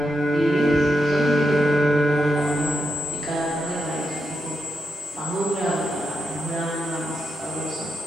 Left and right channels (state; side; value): normal; both; correlation 0.85